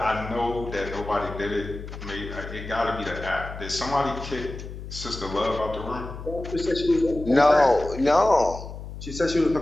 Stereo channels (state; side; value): noise; left; hum, 11 dB below the sound